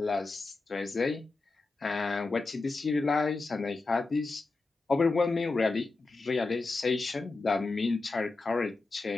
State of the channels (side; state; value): right; quieter; 3.6 dB